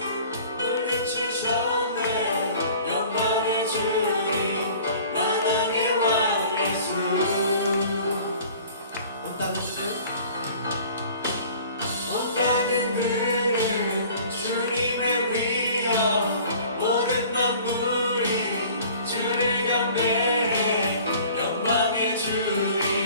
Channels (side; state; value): both; inverted; correlation -0.48